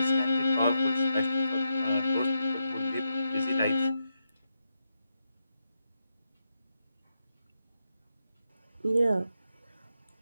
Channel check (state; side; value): inverted; both; correlation -0.84